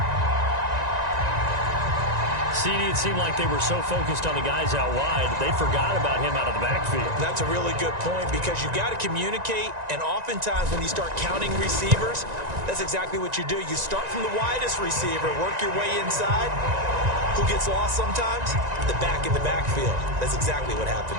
CD, it seemed like they were so focused on the guys out wide, they forgot about him out of the backfield. That's a really good point because you've got to communicate, and oftentimes when you start counting receivers, that's exactly what you do. You start from the widest receiver, work your way inside. Who gets lost sometimes? The back in the backfield. That's exactly what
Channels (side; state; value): left; late; 1.9 ms